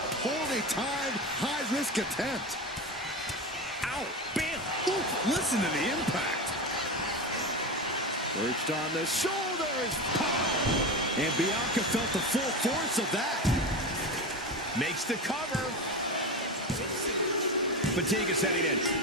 poorly timed, high-risk attempt. Ow. Bam. Ooh, listen to the impact. Perched on the shoulders. Pow! And Bianca felt the full force of that. Makes the cover. Fatigue is setting in,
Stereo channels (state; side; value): normal; both; correlation 0.22